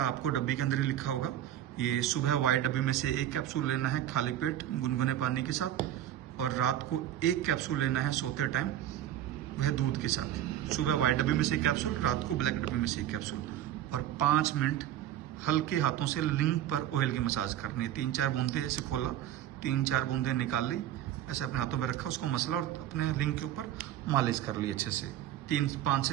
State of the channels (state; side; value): quieter; left; 11.9 dB